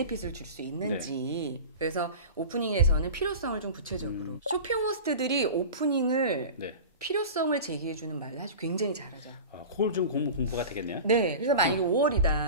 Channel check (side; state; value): both; inverted; correlation -0.33